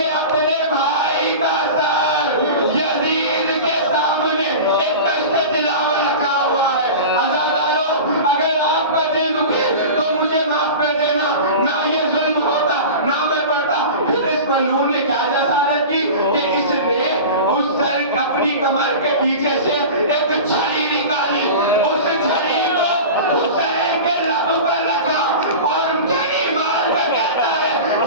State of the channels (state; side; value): inverted; both; correlation -0.32